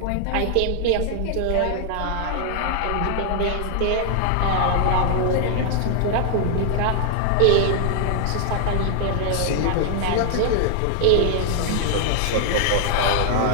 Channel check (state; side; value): different; both; correlation 0.00